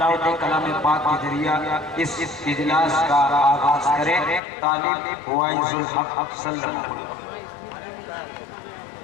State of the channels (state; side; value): drops out; right; at 4.4 s